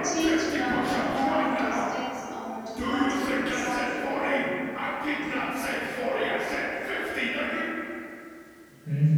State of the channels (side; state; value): both; identical; correlation 1.00